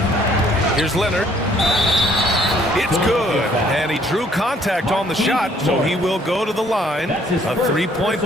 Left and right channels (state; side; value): normal; both; correlation 0.62